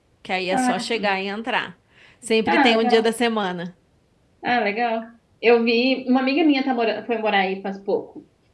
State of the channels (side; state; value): both; identical; correlation 1.00